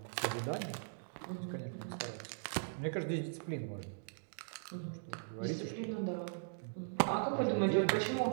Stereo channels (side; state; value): left; silent; digital silence